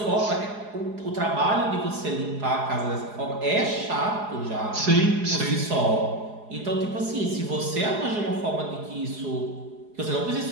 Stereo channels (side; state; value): left; late; 4.8 ms